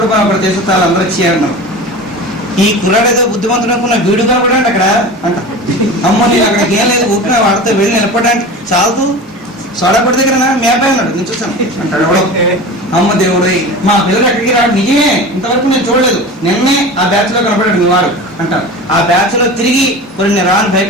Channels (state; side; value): normal; both; correlation 0.33